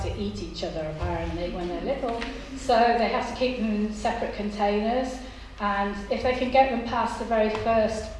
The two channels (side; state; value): both; identical; correlation 1.00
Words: to eat each other apparently when they're little, so they have to keep them in separate containers, and if they can get them past the very first